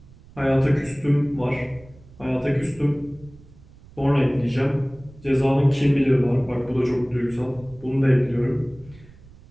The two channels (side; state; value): right; noise; rumble, 23 dB below the sound